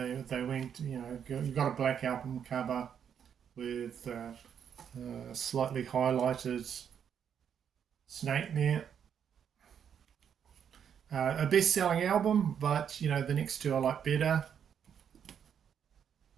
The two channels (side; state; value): left; quieter; 8.2 dB